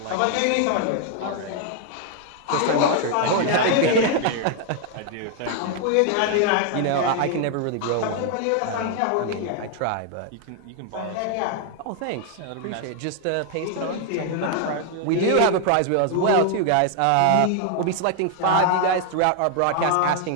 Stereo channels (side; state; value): both; different; correlation 0.00